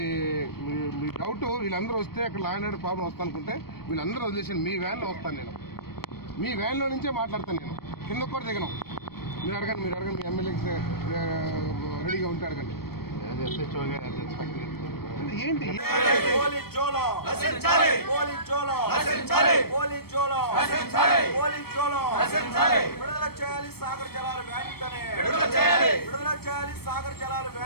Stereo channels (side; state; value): right; late; 0.95 ms